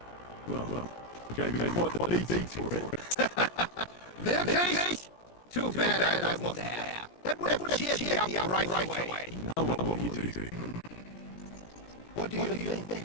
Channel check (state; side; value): late; right; 17 ms